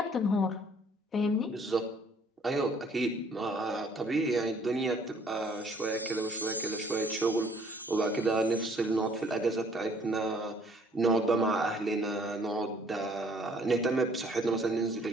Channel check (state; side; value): normal; both; correlation 0.60